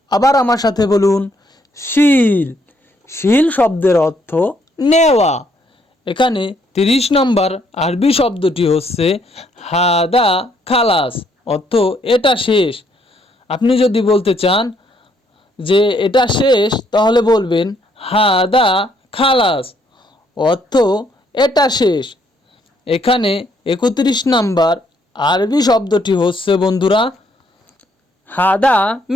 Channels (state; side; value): normal; both; correlation 0.70